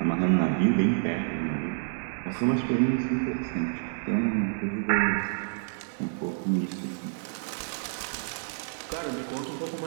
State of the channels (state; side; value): silent; left; 59 dB below the other